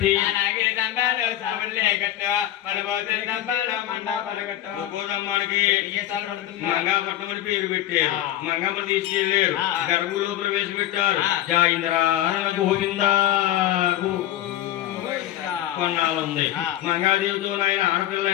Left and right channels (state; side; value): quieter; right; 13.2 dB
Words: గోదమ్మానికి మంగాపట్నం అని పేరు పెట్టారు. మంగమ్మ తీసుకెళ్లారు, గర్భులో ప్రవేశపెట్టారు. జాయింద్ర గోవిందా కొన్నాళ్ళుంది. మంగాదేవితో ఆయన